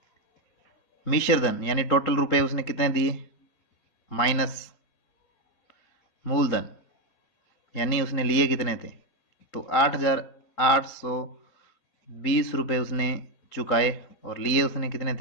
मिश्र धन यानी टोटल रुपए उसने कितने दिए माइनस मूलधन यानी उसने लिए कितने थे, तो 8,820 रुपये उसने चुकाए और लिए उसने कितने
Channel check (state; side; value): late; right; 3.8 ms